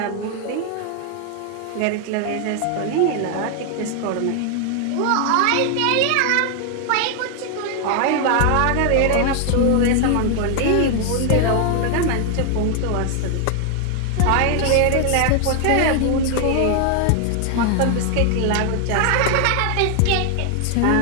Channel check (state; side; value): different; both; correlation 0.00